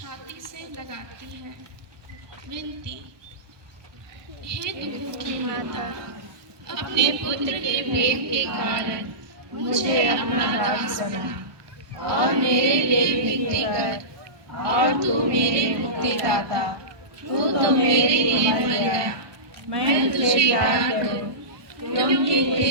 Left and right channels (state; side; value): late; left; 1.2 ms